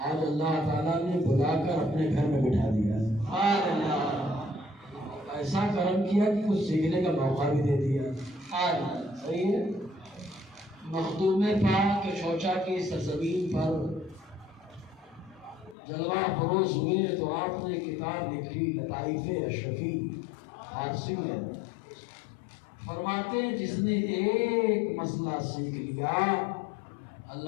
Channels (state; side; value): drops out; right; at 15.8 s